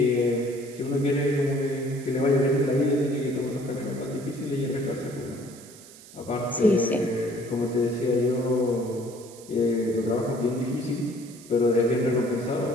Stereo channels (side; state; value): right; noise; hiss, 20 dB below the sound